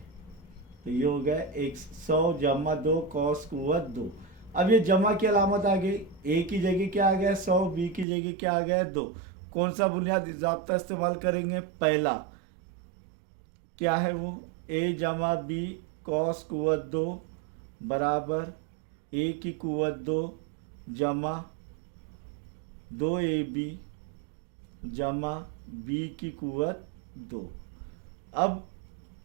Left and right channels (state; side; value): drops out; left; at 8.1 s